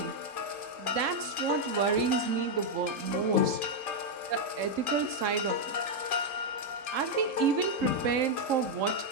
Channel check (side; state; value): left; late; 3.7 ms